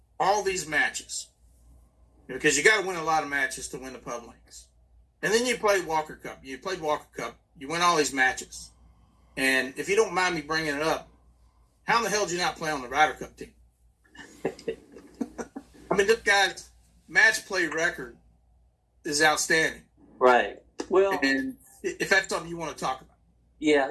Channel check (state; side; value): identical; both; correlation 1.00